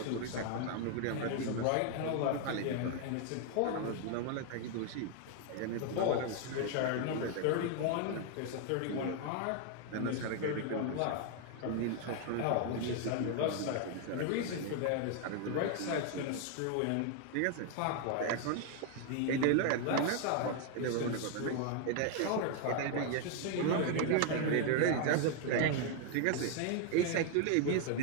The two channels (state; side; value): different; both; correlation 0.00